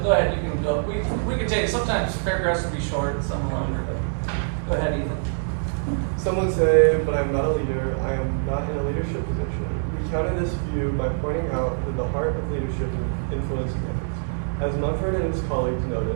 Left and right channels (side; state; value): left; silent; 62 dB below the other